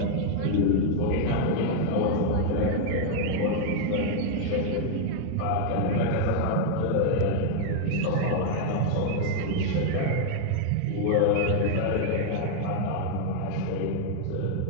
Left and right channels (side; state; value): both; different; correlation 0.00